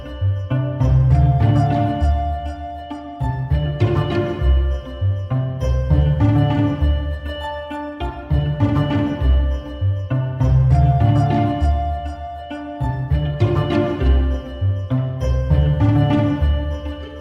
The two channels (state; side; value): identical; both; correlation 1.00